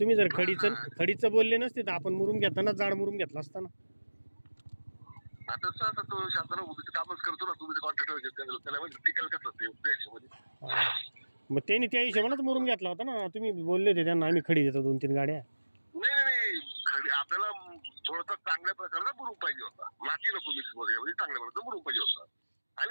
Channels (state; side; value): inverted; both; correlation -1.00